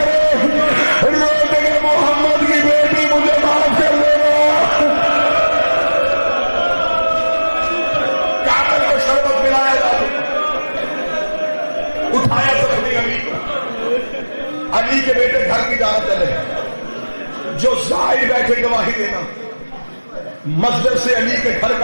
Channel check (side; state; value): both; inverted; correlation -1.00